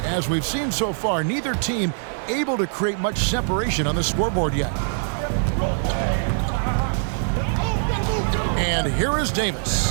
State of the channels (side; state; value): left; silent; 63 dB below the other